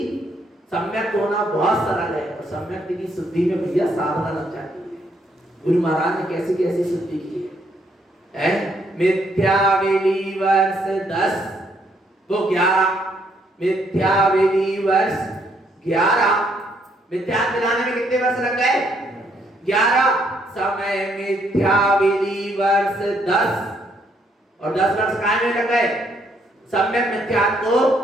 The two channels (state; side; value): normal; both; correlation 0.71